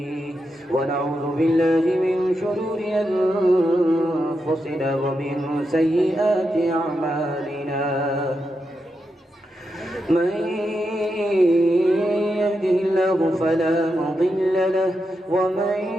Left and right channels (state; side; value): normal; both; correlation 0.86